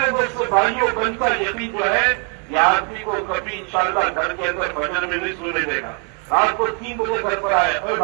دوست بھائیوں بنتا یقین جو ہے، یہ آدمی کو کبھی انشاءاللہ گھر کے اندر فجر میں نہیں سونے دے گا. رات کو 3 بجے گھر پر آئے، اے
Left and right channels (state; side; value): quieter; left; 36.8 dB